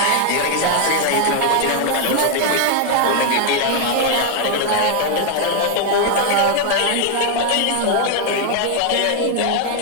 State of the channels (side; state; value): both; different; correlation 0.00